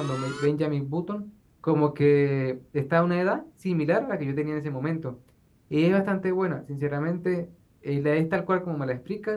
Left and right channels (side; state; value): both; identical; correlation 1.00